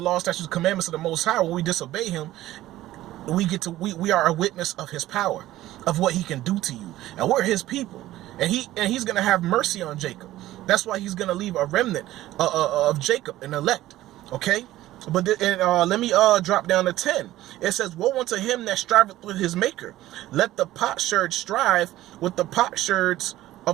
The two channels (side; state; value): left; quieter; 15.2 dB